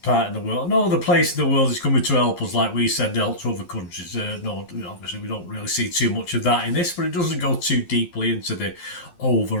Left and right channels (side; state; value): right; late; 11 ms